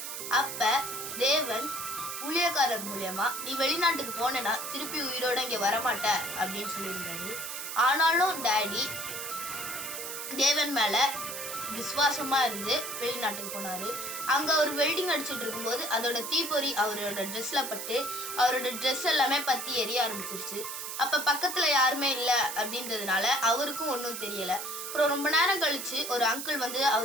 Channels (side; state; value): right; noise; hiss, 6 dB below the sound